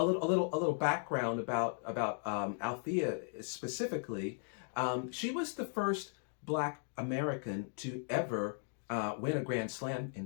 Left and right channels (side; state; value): right; silent; 53 dB below the other